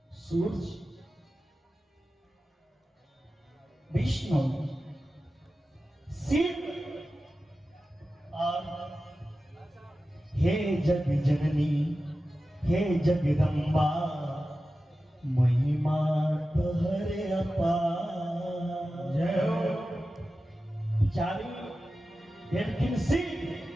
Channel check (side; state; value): both; normal; correlation 0.94